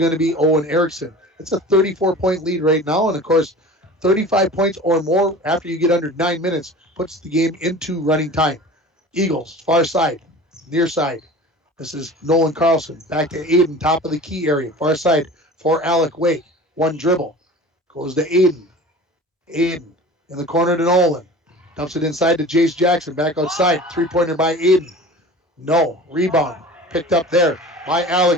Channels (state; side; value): normal; both; correlation 0.39